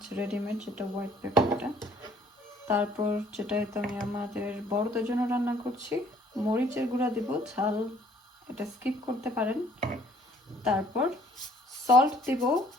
রেডিমেড যেটা হোয়াইট পেপারটা, তারপর যেটা তো আমি আমাদের বড়দের জন্য রান্না করছি মরিচের গুঁড়া দিব, ঝাল এটা স্কিপ করতে পারেন। তারপর সল্ট দিব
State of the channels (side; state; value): both; normal; correlation 0.59